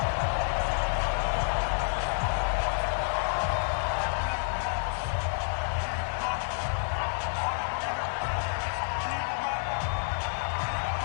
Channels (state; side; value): silent; right; digital silence